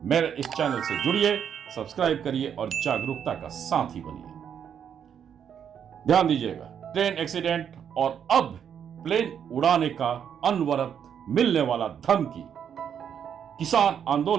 मेरे इस चैनल से जुड़िए, सब्सक्राइब करिए और जागरूकता का साथी बनिए। ध्यान दीजिएगा, ट्रेन एक्सीडेंट और अब प्लेन उड़ाने का अनवरत मिलने वाला धमकी, किसान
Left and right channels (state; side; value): quieter; left; 8.3 dB